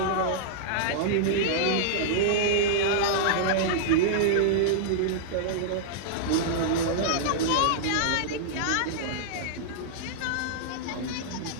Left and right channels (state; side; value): different; both; correlation -0.02